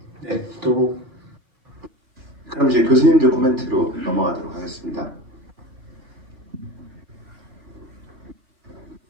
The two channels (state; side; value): late; left; 3.1 ms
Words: 네, 또 그럼 이제 교수님들 코멘트로 넘어가도록 하겠습니다.